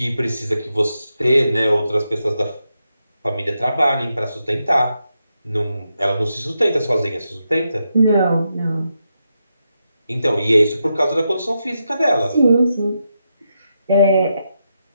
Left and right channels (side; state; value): both; inverted; correlation -0.85